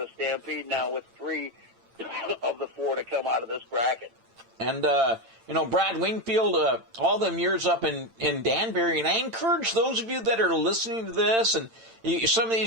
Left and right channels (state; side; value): late; left; 8.9 ms